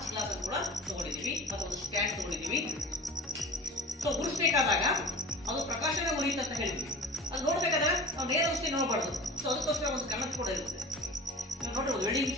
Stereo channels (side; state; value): both; normal; correlation 0.37